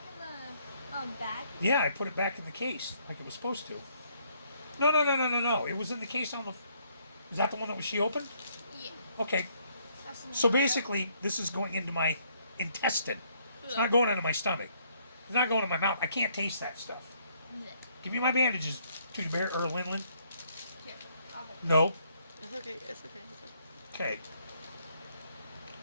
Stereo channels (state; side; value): inverted; both; correlation -0.68